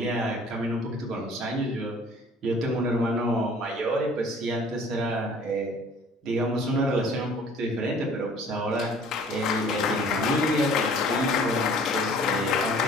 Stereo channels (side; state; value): both; normal; correlation 0.52